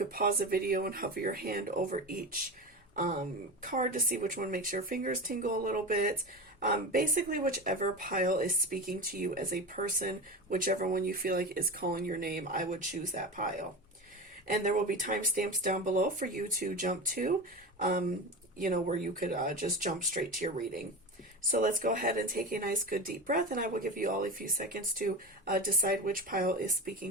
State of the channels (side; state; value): both; normal; correlation 0.26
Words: pause the video and hover your hand over each card to see which one makes your fingers tingle a little bit. Basically, whichever pile is speaking to you as a person, whichever one you feel like is calling your name, I would choose that pile. And there will be timestamps down below for you to jump to, where you could just jump straight to your reading. So let's go ahead and take a nice good deep breath, and I will give you all a few seconds to decide which pile is